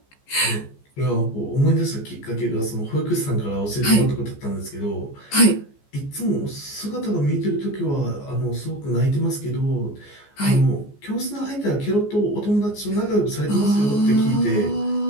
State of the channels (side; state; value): right; late; 14 ms